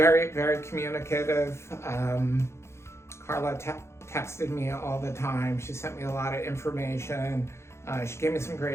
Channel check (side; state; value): right; late; 0.13 ms